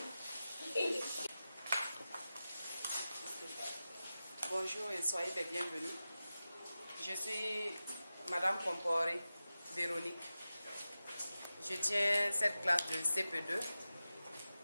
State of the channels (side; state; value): both; inverted; correlation -0.94